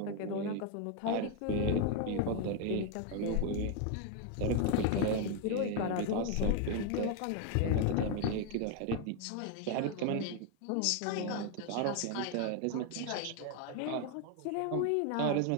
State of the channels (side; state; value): both; different; correlation 0.01